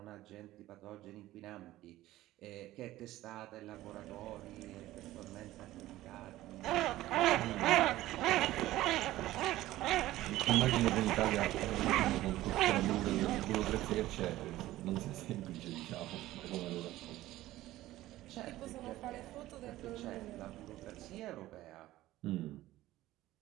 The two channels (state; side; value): quieter; left; 15.9 dB